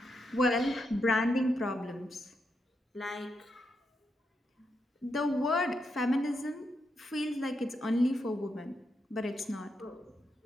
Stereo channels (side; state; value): both; normal; correlation 0.83